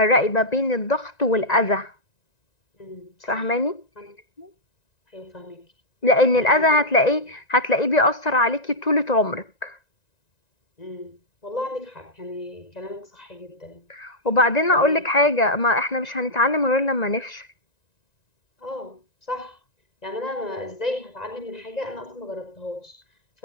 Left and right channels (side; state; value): right; late; 1.9 ms